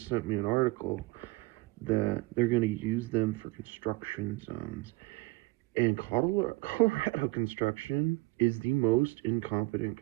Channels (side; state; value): left; quieter; 22.2 dB